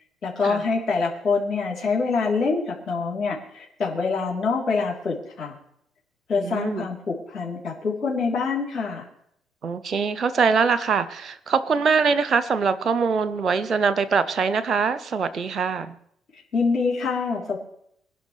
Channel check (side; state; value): both; normal; correlation 0.72